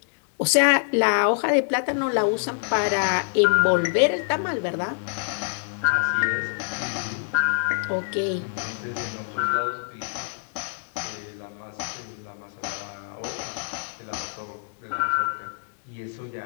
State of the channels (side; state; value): right; silent; digital silence